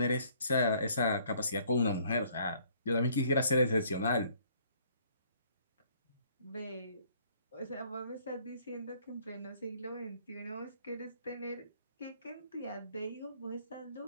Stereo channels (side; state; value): both; inverted; correlation -0.62